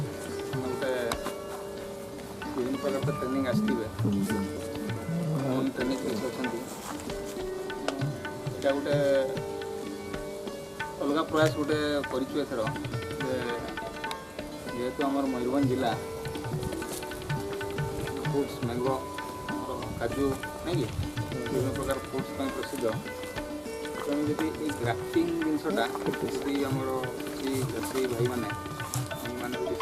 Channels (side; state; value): both; identical; correlation 1.00